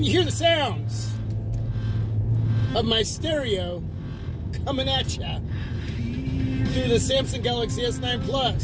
you hear the sounds of my stereo coming at ya through the Samsung Galaxy S9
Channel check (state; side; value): identical; both; correlation 1.00